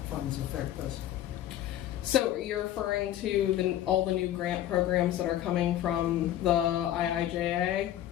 funds affect us? So you're referring to all the new grant programs that are coming from the IIJA?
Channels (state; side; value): quieter; right; 12.4 dB